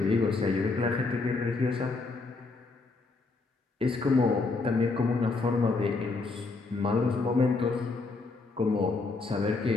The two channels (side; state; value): right; quieter; 3.8 dB